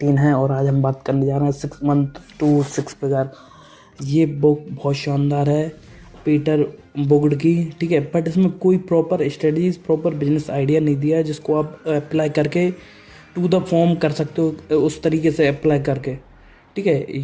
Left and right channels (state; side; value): identical; both; correlation 1.00